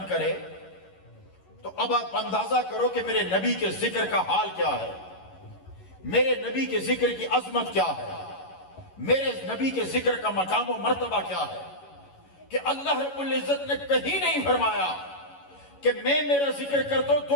کرے تو اب آپ اندازہ کرو کہ میرے نبی کے ذکر کا حال کیا ہے, میرے نبی کے ذکر کی عظمت کیا ہے, میرے نبی کے ذکر کا مقام و مرتبہ کیا ہے. کہ اللہ رب العزت نے کہیں نہیں فرمایا کہ میں میرا ذکر کرتا ہوں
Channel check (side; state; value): right; late; 11 ms